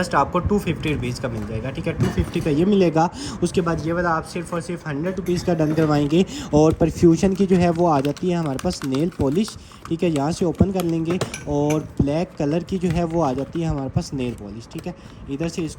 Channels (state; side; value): identical; both; correlation 1.00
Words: आपको 250 रुपीज़ का मिल जाएगा। ठीक है, 250 का ये मिलेगा। उसके बाद ये वाला आप सिर्फ और सिर्फ 100 रुपीज़ का डन करवाएंगे। और परफ्यूशन की जो है वो आ जाती है हमारे पास नेल पॉलिश। ठीक है, यहाँ से ओपन कर लेंगे और ब्लैक कलर की जो है वो आ जाती है हमारे पास नेल पॉलिश। ठीक है, इधर से